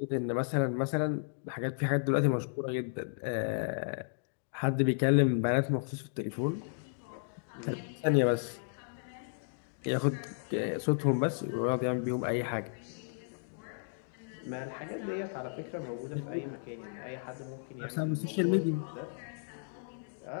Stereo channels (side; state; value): right; silent; digital silence